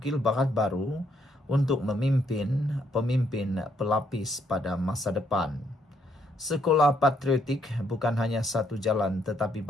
bakat baru untuk memimpin pemimpin pelapis pada masa depan. Sekolah patriotik bukan hanya satu jalan tetapi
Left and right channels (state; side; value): normal; both; correlation 0.72